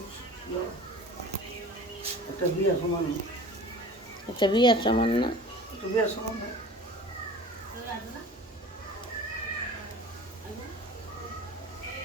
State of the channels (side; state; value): both; normal; correlation 0.41